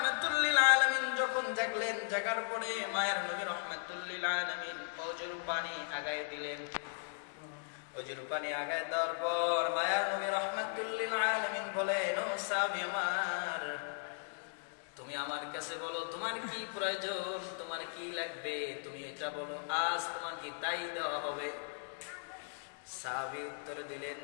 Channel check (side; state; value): right; silent; digital silence